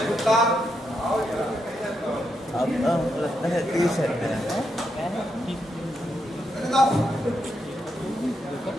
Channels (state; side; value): normal; both; correlation 0.82